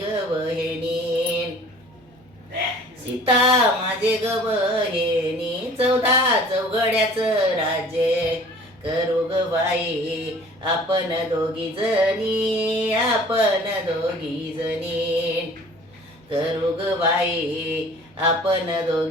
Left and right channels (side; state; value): both; normal; correlation 0.49